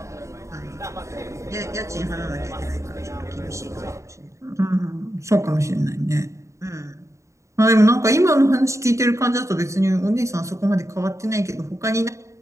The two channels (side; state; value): left; late; 0.14 ms